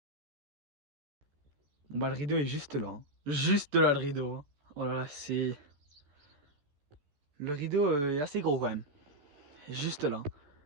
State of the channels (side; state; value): left; late; 14 ms